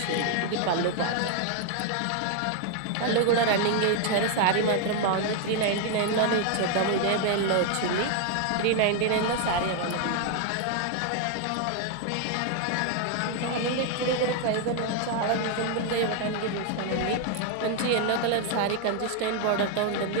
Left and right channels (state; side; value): different; both; correlation 0.01